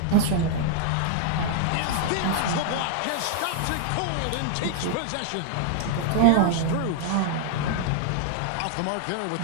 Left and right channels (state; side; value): different; both; correlation 0.00